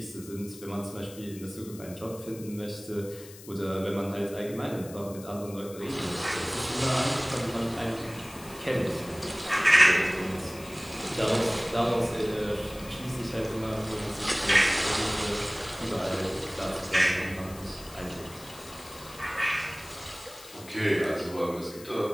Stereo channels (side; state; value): left; noise; hiss, 18 dB below the sound